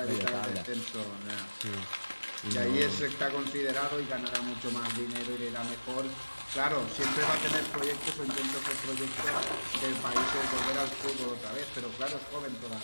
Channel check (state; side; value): inverted; both; correlation -1.00